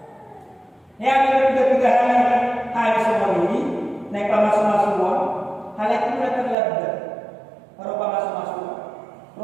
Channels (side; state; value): left; drops out; at 6.6 s